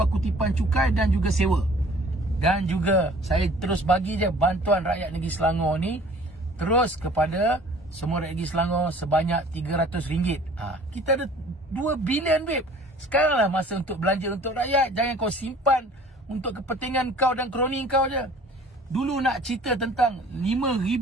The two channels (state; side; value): normal; both; correlation 0.50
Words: kutipan cukai dan juga sewa. Dan juga saya terus bagi je bantuan rakyat negeri Selangor ni terus kepada semua rakyat negeri Selangor sebanyak RM300. Kita ada 2 bilion babe. Sekaranglah masa untuk belanja untuk rakyat. Jangan kau simpan untuk kepentingan kau dan kroni kau je. Dulu nak cerita tentang